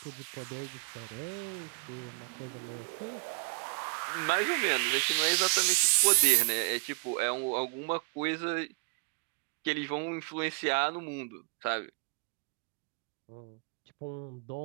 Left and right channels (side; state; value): left; quieter; 37.9 dB